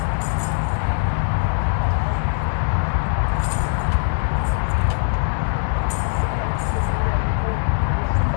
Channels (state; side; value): silent; right; 65 dB below the other